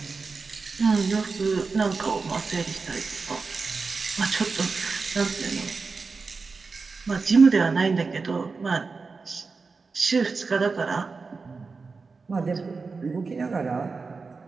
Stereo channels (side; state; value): left; quieter; 4.4 dB